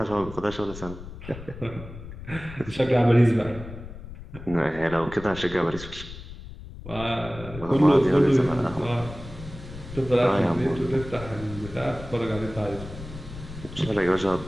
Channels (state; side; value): noise; left; rumble, 13 dB below the sound